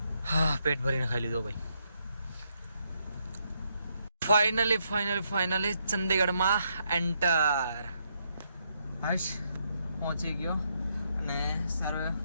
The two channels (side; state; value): both; inverted; correlation -0.77